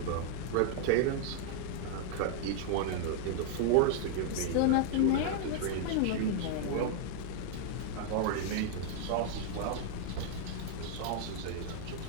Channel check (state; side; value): different; both; correlation 0.00